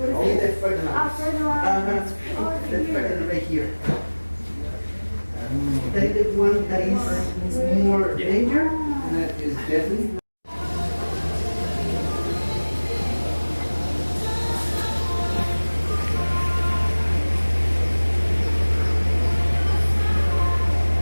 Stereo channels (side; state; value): both; inverted; correlation -1.00